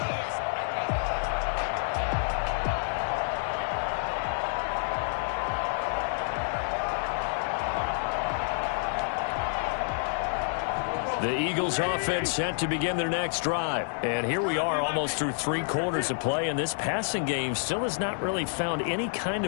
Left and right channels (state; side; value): silent; right; digital silence